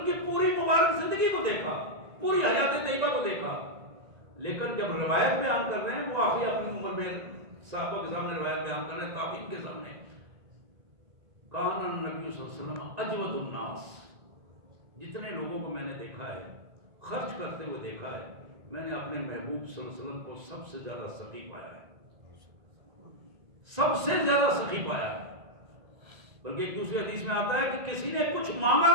کی پوری مبارک زندگی کو دیکھا، پوری حیات طیبہ کو دیکھا، لیکن جب روایت بیان کر رہے ہیں وہ آخری اپنی عمر میں صحابہ کے سامنے روایت بیان کر رہے ہیں، تابعین کے سامنے، کان النبی صلی اللہ علیہ وسلم اجود الناس، جتنے لوگوں کو میں نے دیکھا ہے خرچ کرتے ہوئے دیکھا ہے، میں نے اپنے محبوب صلی اللہ علیہ وسلم کو سب سے زیادہ سخی پایا ہے، سب سے زیادہ سخی پایا ہے۔ بلکہ ایک دوسری حدیث میں آتا ہے کہ کسی نے کچھ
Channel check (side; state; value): left; late; 1.9 ms